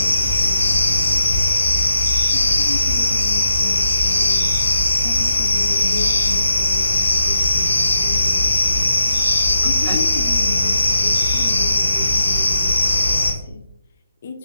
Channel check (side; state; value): both; inverted; correlation -0.85